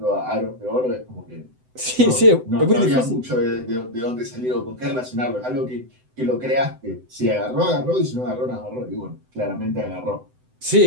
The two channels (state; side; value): late; left; 7.9 ms